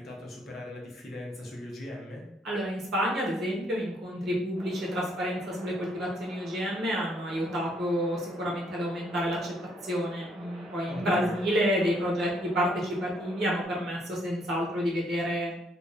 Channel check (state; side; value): normal; both; correlation 0.69